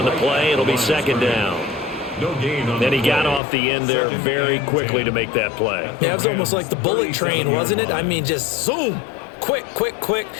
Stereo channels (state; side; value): drops out; right; at 3.4 s